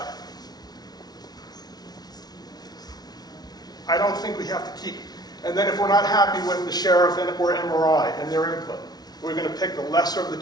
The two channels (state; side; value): late; right; 0.19 ms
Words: don't think we have to keep, and then if we're not happy with the sheriff or MRI and their input, we're going to pick the lesser of the